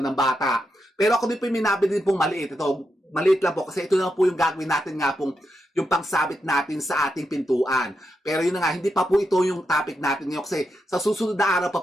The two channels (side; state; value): both; normal; correlation 0.85